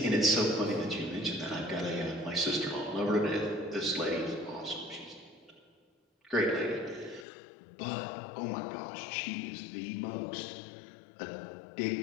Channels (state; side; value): drops out; right; at 7.2 s